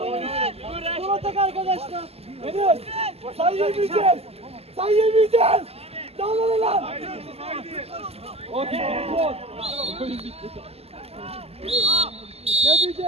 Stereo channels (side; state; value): left; late; 0.29 ms